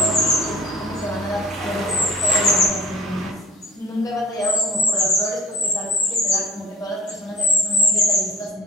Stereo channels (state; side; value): normal; both; correlation 0.43